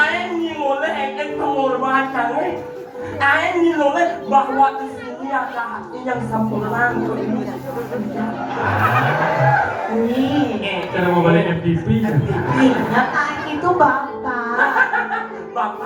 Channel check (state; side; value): identical; both; correlation 1.00